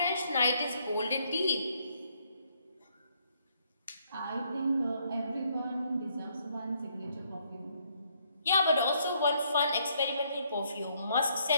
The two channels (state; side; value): inverted; both; correlation -0.70